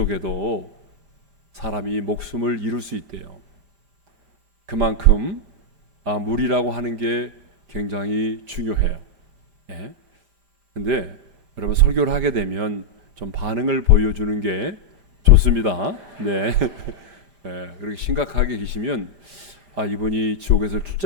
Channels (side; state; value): left; late; 5.0 ms